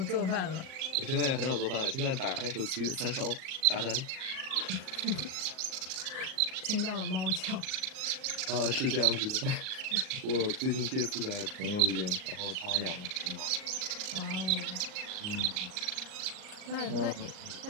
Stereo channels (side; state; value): left; late; 39 ms